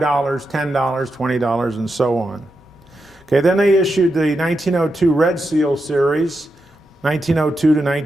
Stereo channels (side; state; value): both; normal; correlation 0.87